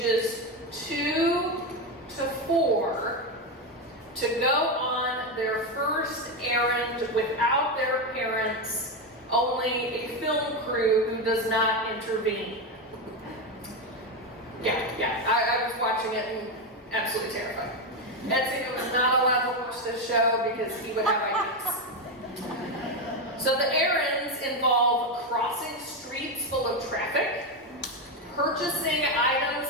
2 to 4, to go on their first errand without their parents, only a film crew who does not intervene. I was watching it and absolutely terrified. Ezio was not allowed to watch this show because he would have ideas. So the errands involve crossing streets full of traffic, purchasing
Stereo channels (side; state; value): both; normal; correlation 0.10